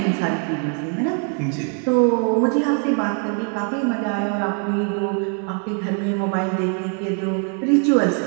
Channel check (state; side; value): quieter; left; 38.8 dB